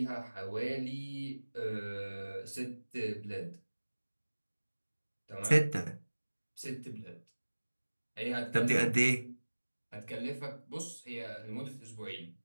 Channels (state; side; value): inverted; both; correlation -1.00